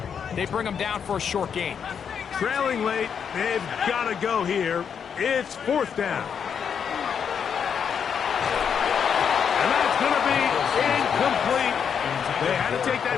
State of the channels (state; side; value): quieter; right; 7.3 dB